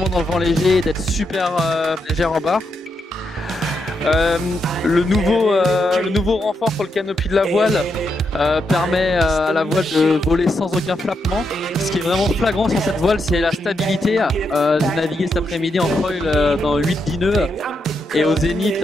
dans le vent léger et d'être super légère en barre. Le nouveau renfort sur le canopy de la voile permet à la voile de voler sans aucun flappement. Ce qui est vraiment flagrant sur cette voile, c'est la stabilité. J'ai navigué cet après-midi en foil dans 8-10 nœuds et au zénith,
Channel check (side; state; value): both; normal; correlation 0.82